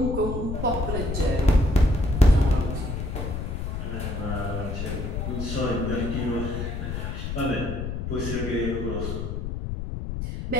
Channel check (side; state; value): left; noise; rumble, 4 dB below the sound